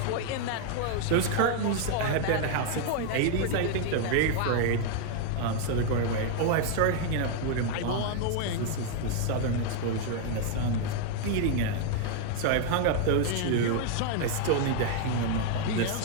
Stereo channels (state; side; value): different; both; correlation 0.00